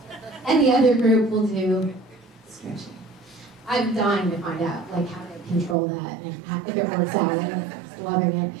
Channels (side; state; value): left; drops out; at 5.8 s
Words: And the other group will do stretching. I'm dying to find out, like, how to control that and if it works out. I'm just loving it.